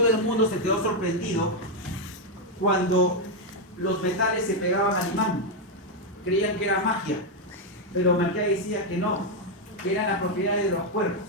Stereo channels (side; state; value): both; normal; correlation 0.02